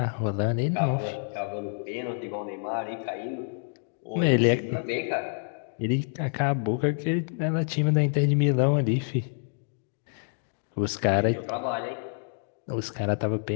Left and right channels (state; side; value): silent; right; 60 dB below the other